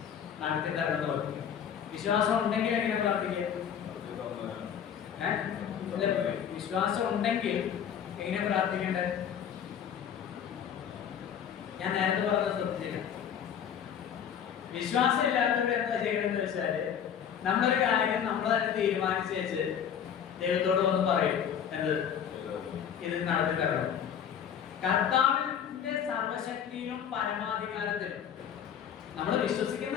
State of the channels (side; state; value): right; quieter; 8.6 dB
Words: നടത്തി തരണം പറയും. വിശ്വാസം ഉണ്ടെങ്കിൽ എങ്ങനെ പ്രാർത്ഥിക്കുക? വിശ്വാസം ഉണ്ടെങ്കിൽ എങ്ങനെ പ്രാർത്ഥിക്കേണ്ടത്? ഞാൻ നേരത്തെ പറഞ്ഞത് ശ്രദ്ധിച്ചില്ല. വിശ്വാസം ഇല്ലാത്തവർ എന്താ ചെയ്യണമെന്ന് വെച്ചാല്, നമ്മളൊരു കാര്യം നമ്മൾ തന്നെ തീരുമാനിച്ച് വെച്ച് ദൈവത്തോട് വന്ന് പറയും, എന്ത്? ഇത് നടത്തി തരണം. കർത്താവിന്റെ സർവശക്തിയിലും പരമാധികാരത്തിലും നമ്മൾ